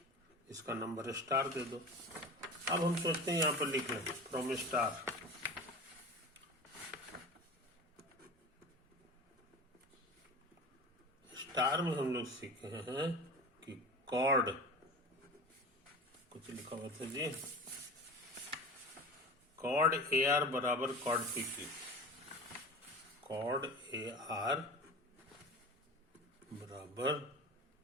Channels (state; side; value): normal; both; correlation 0.33